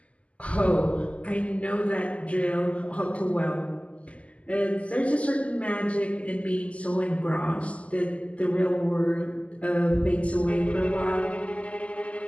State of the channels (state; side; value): late; right; 0.064 ms